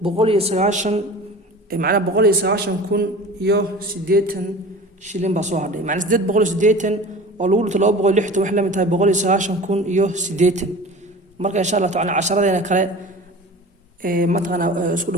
190 macna 190 iyo 80 shilin baa soo hadhay macna 880 oo lagu dhunto 260 wax la mid tahay 190 iyo 80 marka insha Allah taala casharadena kale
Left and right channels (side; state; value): both; normal; correlation 0.38